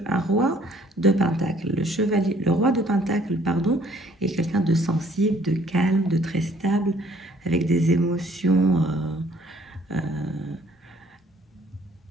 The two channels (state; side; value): normal; both; correlation 0.60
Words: roi de pentacle. Le roi de pentacle, pardon, est quelqu'un de sensible, de calme, de très stable, avec des émotions